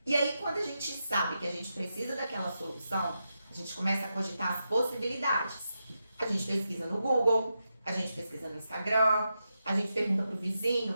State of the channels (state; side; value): inverted; both; correlation -0.87